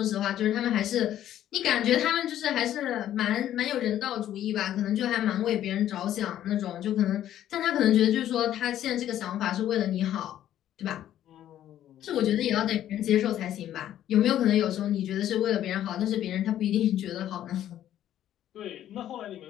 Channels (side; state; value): right; quieter; 11.8 dB